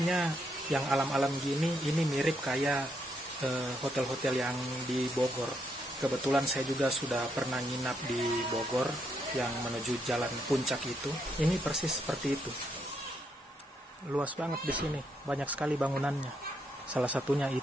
yang alam-alam gini, ini mirip kayak hotel-hotel yang di Bogor. Kebetulan saya juga sudah pernah nginap di Bogor yang menuju jalan puncak itu. Ini persis seperti itu. Luas banget di sini, banyak sekali bangunannya. Salah satunya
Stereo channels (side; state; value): both; normal; correlation 0.77